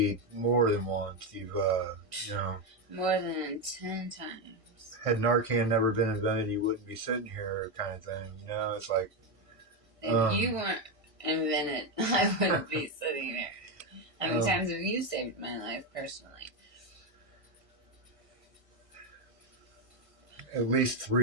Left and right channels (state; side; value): late; left; 1.6 ms